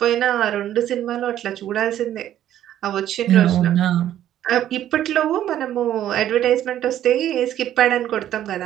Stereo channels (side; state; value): left; quieter; 11.7 dB